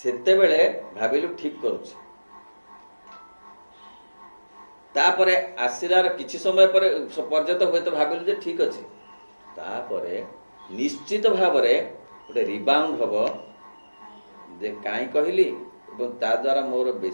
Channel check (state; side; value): inverted; both; correlation -1.00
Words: बेले भाबिलु ठीक करूछ तापरे आसिलार किछि समय पर पर्यंत होय तो भाबिलु जे ठीक अछि तापरे निश्चित भाव रे गोटे रिबाउंड हब जे काई कहली एवं ता द्वारा मोर